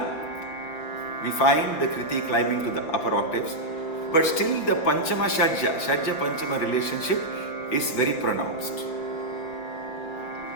we find the kriti climbing to the upper octaves, but still the Panchama Shadja Panchama relationship is very pronounced.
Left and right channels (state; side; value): late; right; 5.8 ms